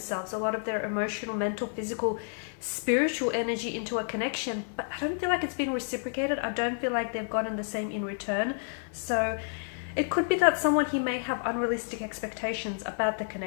a lot of their emotional, mental, physical, spiritual energy into a connection, but I don't feel like it's been reciprocated. I don't feel like they've gotten the same in return. So it could be that someone he may have unrealistic expectations about the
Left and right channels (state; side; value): silent; right; 58 dB below the other